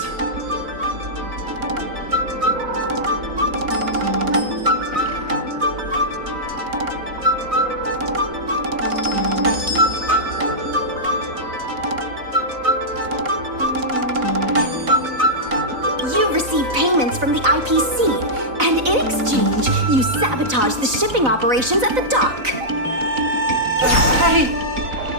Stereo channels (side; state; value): left; late; 4.0 ms